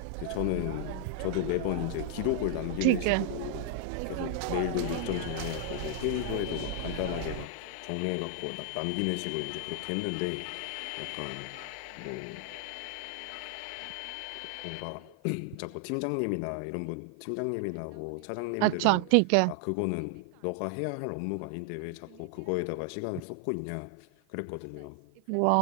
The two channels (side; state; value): both; different; correlation 0.00